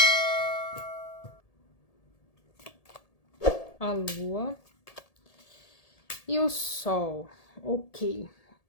A lua e o sol, ok.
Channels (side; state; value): right; late; 1.8 ms